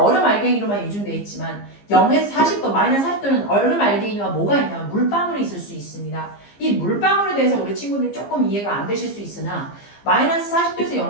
알갱이로만 유증되어 있지만 0에서 40도, 마이너스 40도는 얼음 알갱이와 뭐가 있냐면 물방울이 있을 수 있습니다. 이 물방울에 대해서 우리 친구들이 조금 이해가 안 되실 수 있으나 마이너스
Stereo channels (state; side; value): late; right; 15 ms